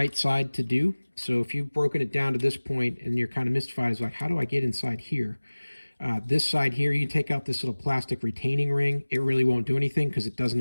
side to do. So if you've broken it down to this point and you're kind of mystified, it's like, how do I get inside here? This side here, you take out this little plastic retaining ring. It really won't do anything because it does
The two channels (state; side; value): inverted; both; correlation -1.00